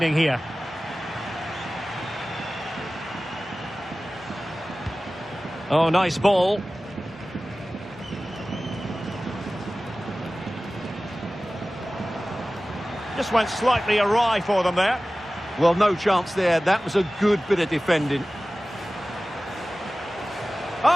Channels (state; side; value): normal; both; correlation 0.97